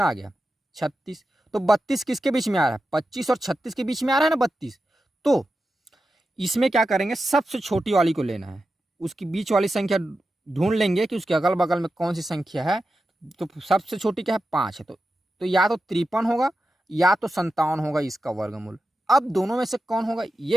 आ गया 36। तो 32 किसके बीच में आ रहा है, 25 और 36 के बीच में आ रहा है ना 32। तो इसमें क्या करेंगे, सबसे छोटी वाली को लेना है, उसकी बीच वाली संख्या ढूंढ लेंगे कि उसके अगल बगल में कौन सी संख्या है। तो सबसे छोटी क्या है, 5 है। तो या तो 53 होगा या तो 57 होगा इसका वर्गमूल। अब दोनों में से कौन होगा ये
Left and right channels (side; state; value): both; normal; correlation 0.91